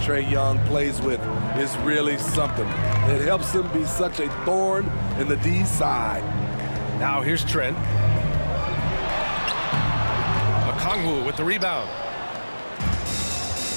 Young plays with is really something. It helps him be such a thorn in the D side. Now here's Trent. Okongwu with the rebound.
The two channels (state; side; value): inverted; both; correlation -1.00